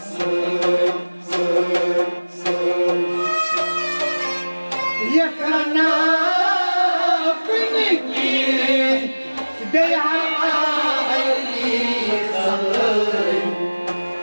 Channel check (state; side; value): inverted; both; correlation -1.00